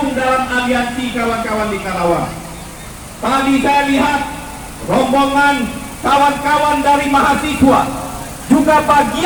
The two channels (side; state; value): both; identical; correlation 1.00